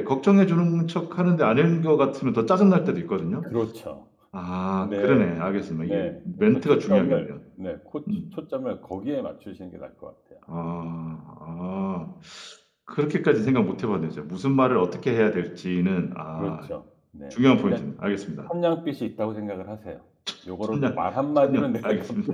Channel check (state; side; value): identical; both; correlation 1.00